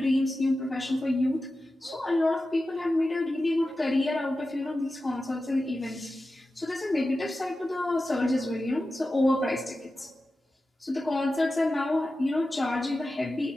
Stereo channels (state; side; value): normal; both; correlation 0.93